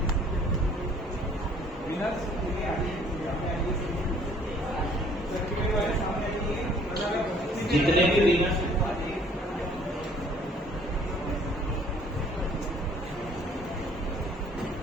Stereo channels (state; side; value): normal; both; correlation 0.58